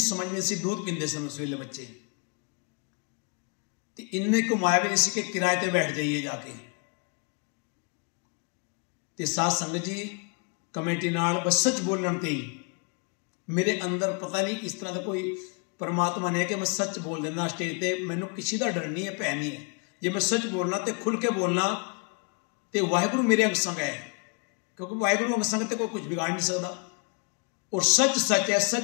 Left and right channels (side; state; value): right; quieter; 36.5 dB